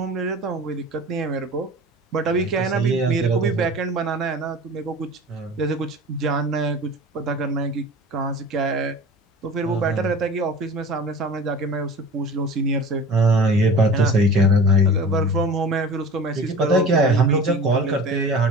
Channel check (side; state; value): both; normal; correlation 0.38